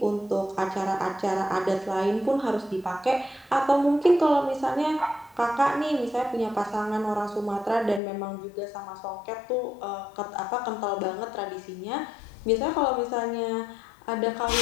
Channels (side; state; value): right; drops out; at 8.0 s